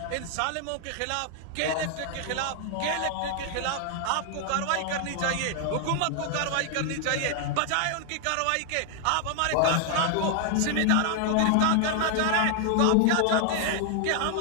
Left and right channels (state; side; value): different; both; correlation 0.00